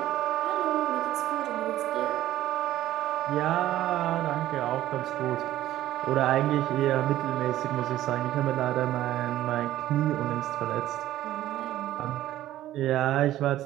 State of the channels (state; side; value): quieter; left; 13.8 dB